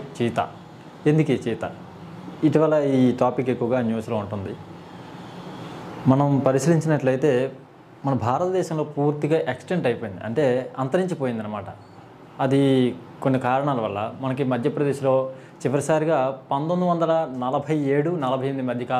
చీతా. ఎందుకు ఈ చీతా? ఇటీవల ఈ టాపిక్ ఎక్కువగా న్యూస్లో ఉంటుంది. మనం పరిశీలించినట్లయితే మన భారతదేశంలో పూర్తిగా ఎక్స్టెంట్ అయిపోయింది, అంటే అంతరించిపోయింది అనమాట. అది కొన్ని కారణాల వల్ల మనకి మధ్యప్రదేశ్లో చివరిసారిగా 1947-48 మధ్య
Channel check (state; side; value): identical; both; correlation 1.00